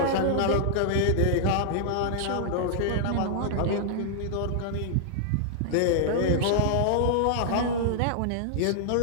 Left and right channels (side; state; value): both; different; correlation -0.01